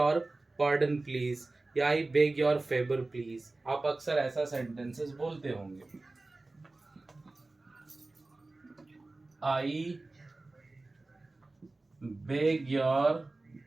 pardon please, या I beg your favour please. आप अक्सर ऐसा सेंटेंसेस बोलते होंगे, I beg your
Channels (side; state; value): left; quieter; 3.2 dB